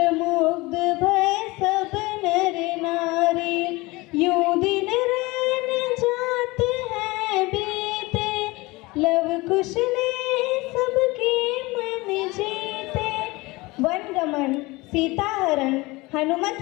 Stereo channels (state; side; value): quieter; right; 22.5 dB